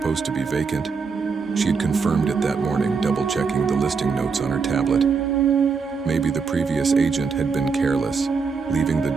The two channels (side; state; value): left; quieter; 5.2 dB